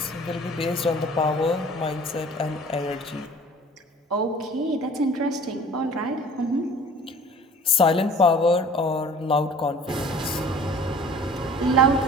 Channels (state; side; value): normal; both; correlation 0.47